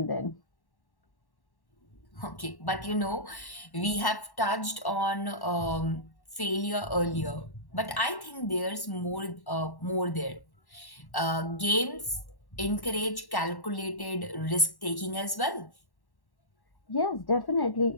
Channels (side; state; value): right; late; 1.1 ms